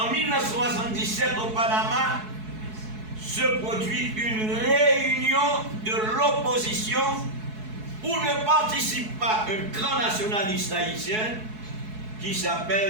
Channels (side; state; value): left; late; 4.7 ms